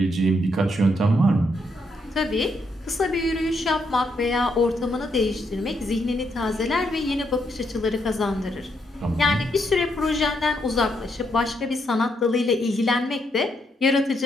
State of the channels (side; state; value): both; normal; correlation 0.77